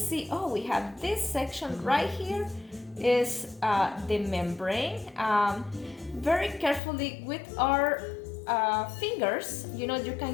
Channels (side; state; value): right; drops out; at 6.8 s